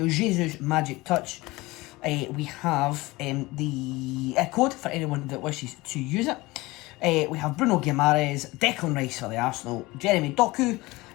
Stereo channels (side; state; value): right; quieter; 21.2 dB